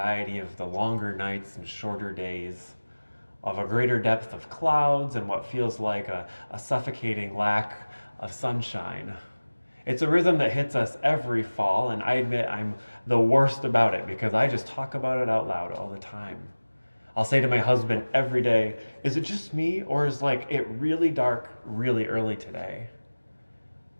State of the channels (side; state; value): both; inverted; correlation -1.00